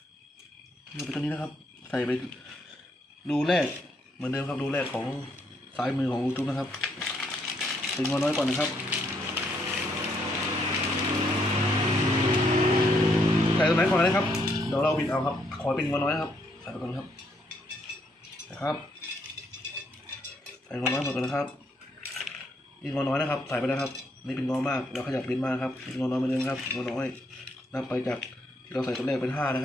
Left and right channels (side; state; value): both; normal; correlation 0.73